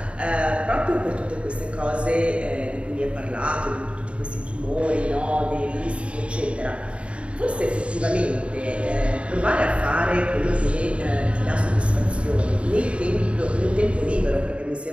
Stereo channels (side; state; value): left; late; 0.060 ms